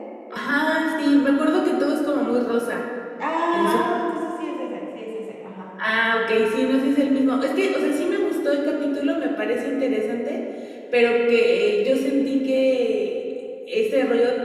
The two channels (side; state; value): both; identical; correlation 1.00